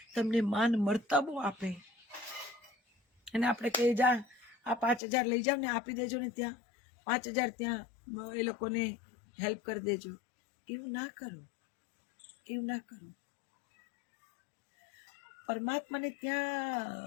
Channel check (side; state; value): right; drops out; at 5.0 s